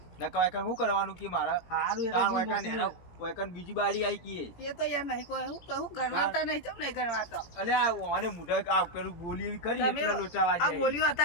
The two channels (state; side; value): late; right; 17 ms